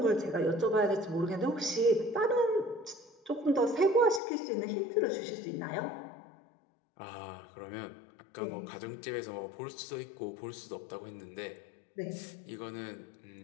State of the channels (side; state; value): right; drops out; at 4.2 s